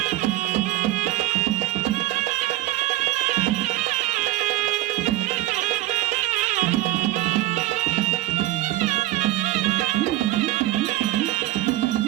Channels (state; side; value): quieter; left; 16.1 dB